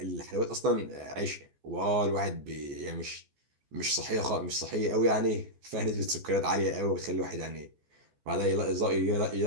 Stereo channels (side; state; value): left; late; 14 ms